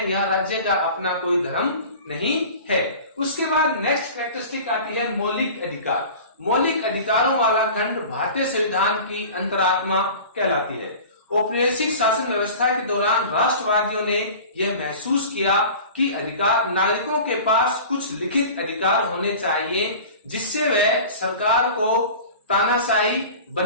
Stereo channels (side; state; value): both; inverted; correlation -0.39